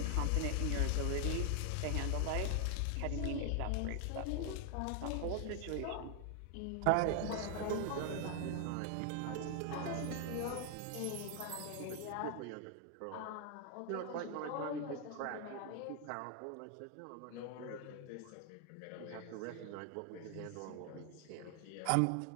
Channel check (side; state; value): both; different; correlation 0.00